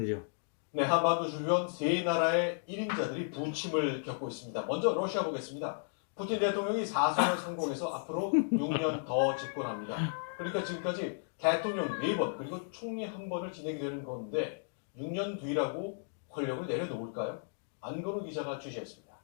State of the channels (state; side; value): silent; right; digital silence